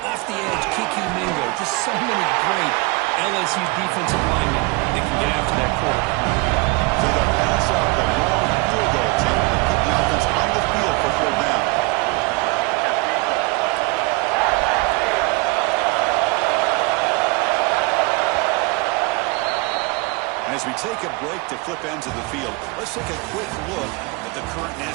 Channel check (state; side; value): quieter; left; 26.4 dB